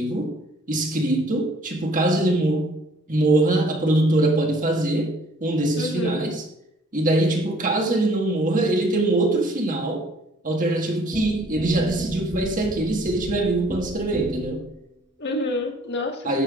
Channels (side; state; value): both; normal; correlation 0.58